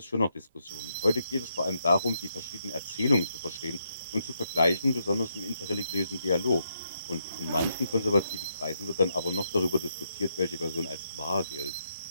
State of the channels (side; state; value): both; inverted; correlation -0.79